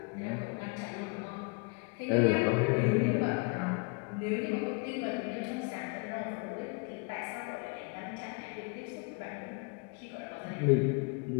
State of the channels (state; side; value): quieter; right; 33.1 dB